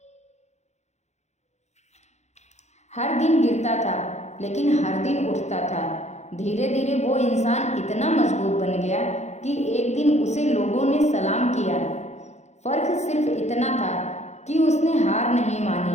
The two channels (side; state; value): right; late; 0.33 ms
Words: हर दिन गिरता था लेकिन हर दिन उठता था। धीरे धीरे वो इंसान इतना मजबूत बन गया कि एक दिन उसे लोगों ने सलाम किया। फर्क सिर्फ इतना था कि उसने हार नहीं